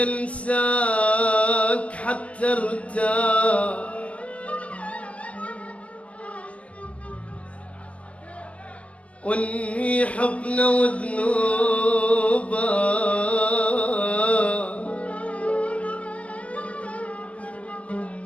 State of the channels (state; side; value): late; right; 0.063 ms